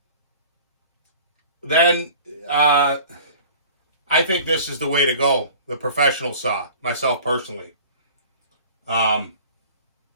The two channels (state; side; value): inverted; both; correlation -0.44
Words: then I think this is the way to go, the professional saw, myself personally.